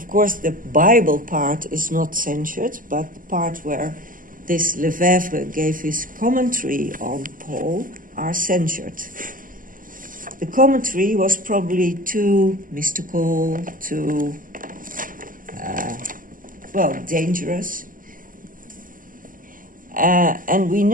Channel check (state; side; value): late; left; 0.40 ms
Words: course, the Bible part is not censored, but the part where this Lefebvre gave his commentary on Paul are censored. The commentary was probably too mystical, too, dangerous. And we